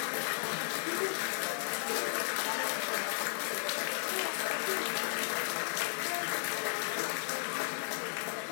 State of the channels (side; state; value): right; silent; digital silence